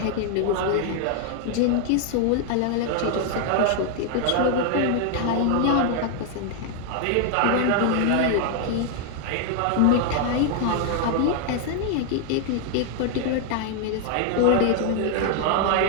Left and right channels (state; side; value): different; both; correlation 0.00